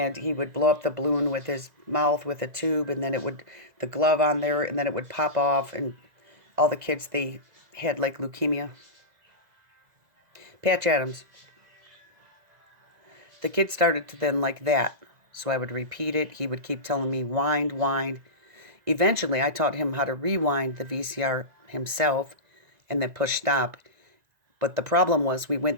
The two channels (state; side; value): late; left; 2.0 ms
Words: he would blow up the balloon with his mouth with a tube, and then the glove on there, and then it would pop off, and all the kids, they had like leukemia. Patch Adams. The kid started to then like that. So I would repeat it. He would keep telling me, wind, wind. Eventually, I taught him how to rewind the VCR himself and then push stop. But the problem was we